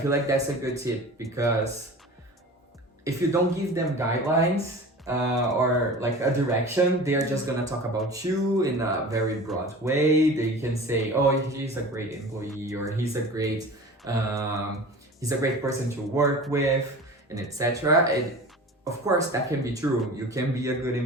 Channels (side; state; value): both; normal; correlation 0.37